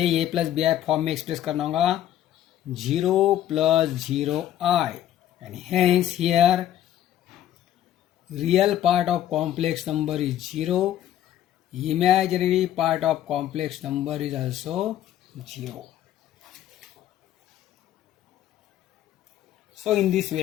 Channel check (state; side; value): quieter; right; 11.9 dB